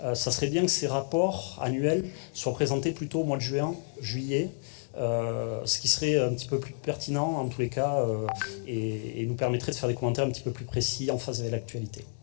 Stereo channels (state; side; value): silent; right; 58 dB below the other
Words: Ça serait bien que ces rapports annuels soient présentés plutôt au mois de juin, juillet, ce qui serait un petit peu plus pertinent en tous les cas et nous permettrait de faire des commentaires un petit peu plus précis en phase avec l'actualité.